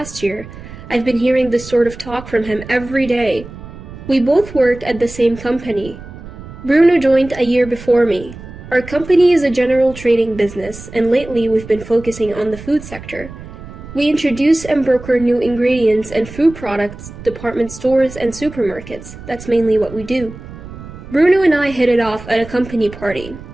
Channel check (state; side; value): noise; right; rumble, 15 dB below the sound